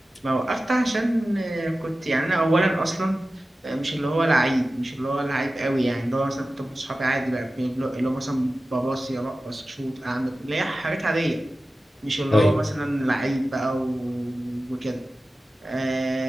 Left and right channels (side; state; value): both; normal; correlation 0.95